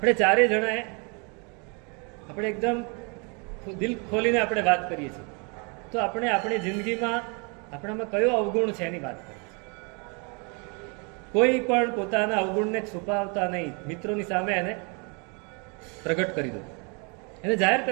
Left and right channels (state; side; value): quieter; left; 33.8 dB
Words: ચારે જણાએ આપણે એકદમ દિલ ખોલીને આપણે વાત કરીએ છીએ, તો આપણે આપણી જિંદગીમાં આપણામાં કયો અવગુણ છે એની વાત કરીએ. કોઈ પણ પોતાના અવગુણને છુપાવતા નહીં, મિત્રોની સામે એને પ્રગટ કરી દો, એને જાહેર